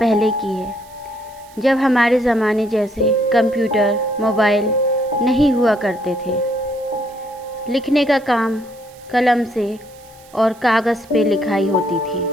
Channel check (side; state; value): right; noise; hiss, 26 dB below the sound